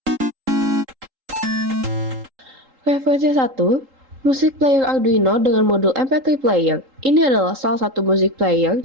Referensi 1, musik player Arduino dengan modul MP3 player. Ini adalah salah satu musik player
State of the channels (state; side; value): late; left; 3.8 ms